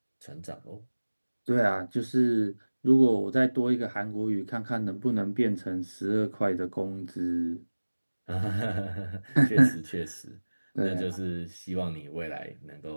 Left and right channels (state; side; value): inverted; both; correlation -1.00